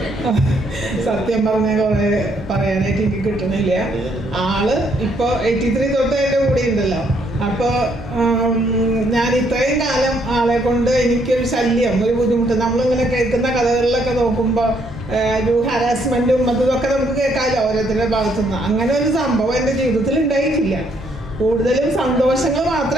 സത്യം പറഞ്ഞാൽ കുറേ പറയാനായിട്ട് എനിക്ക് കിട്ടണില്ല. ആള് ഇപ്പോൾ 83 തൊട്ട് എൻ്റെ കൂടെ ഉണ്ടല്ലോ. അപ്പോൾ ഞാൻ ഇത്രയും കാലം ആളെ കൊണ്ട് എനിക്കൊരു ശല്യം, ഒരു ബുദ്ധിമുട്ട്, നമ്മളിങ്ങനെ കേൾക്കുന്ന കഥകളിലൊക്കെ നോക്കുമ്പോൾ ഒരു ഹാരാസ്മെൻറ്റും ഇതൊക്കെ നമുക്ക് കേൾക്കാമല്ലോ ഓരോരുത്തരുടെ ഭാഗത്തുനിന്ന്. അങ്ങനെ ഒരു സംഭവം എൻ്റെ ജീവിതത്തിൽ ഉണ്ടായിട്ടില്ല. കൂടുതലും സന്തോഷങ്ങൾ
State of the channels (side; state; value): both; normal; correlation 0.70